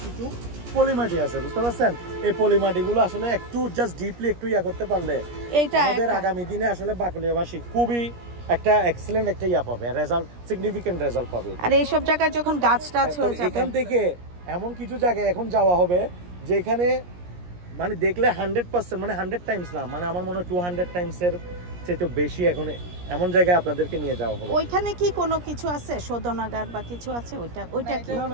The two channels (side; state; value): left; late; 17 ms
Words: কিছু পলিমাটি আছে, বুঝতে পারছেন? এই পলিমাটিগুলো আসলে একটু জাস্ট ডিপলি একটু করতে পারলে এইটা আমাদের আগামী দিনে আসলে বাকলিয়াবাসী খুবই একটা এক্সেলেন্ট একটা পাবে, রেজাল্ট, সিগনিফিকেন্ট রেজাল্ট পাবে। আর এই সব জায়গায় যখন গাছ টাছ হয়ে যাবে, এখান থেকে এমন কিছু জায়গায় এখন যাওয়া হবে যেখানে মানে দেখলে 100% মানে 100 টাইমস না, মানে আমার মনে হয় 200 টাইমসের চেয়ে বেশি এখন এমন জায়গায় আপনাদেরকে নিয়ে যাওয়া হবে। ওইখানে কি কোনো কিছু আছে, শোধনাগার বা কিছু আছে? ওইটা কি